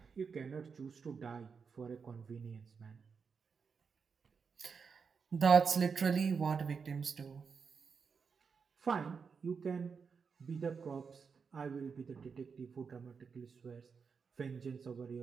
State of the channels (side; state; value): left; quieter; 5.7 dB